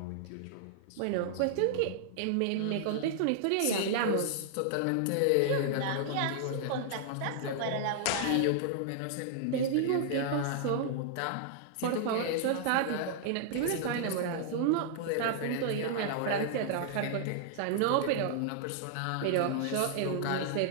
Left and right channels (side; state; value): both; different; correlation -0.01